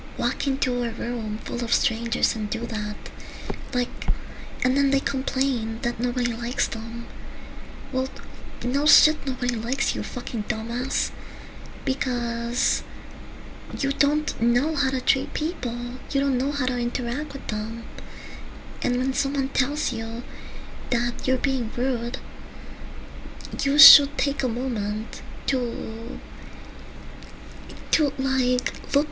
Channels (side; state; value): both; identical; correlation 1.00